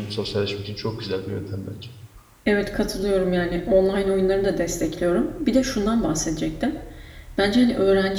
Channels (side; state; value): both; identical; correlation 1.00